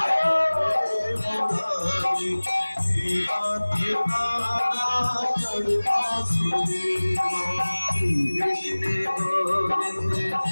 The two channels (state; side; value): inverted; both; correlation -1.00